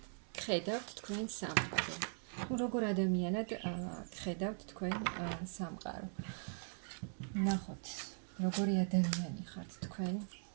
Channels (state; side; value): silent; left; 51 dB below the other